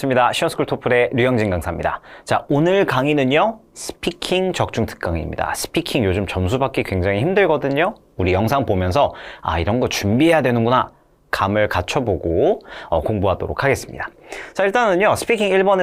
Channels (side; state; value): both; identical; correlation 1.00